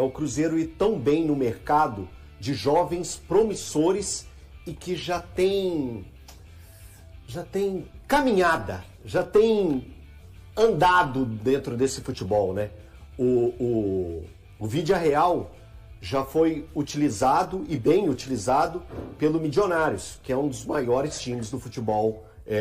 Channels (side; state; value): both; identical; correlation 1.00